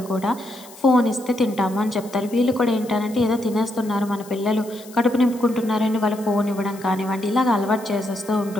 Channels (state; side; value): noise; left; hiss, 20 dB below the sound